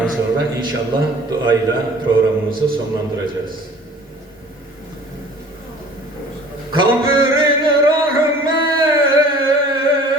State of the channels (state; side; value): normal; both; correlation 0.49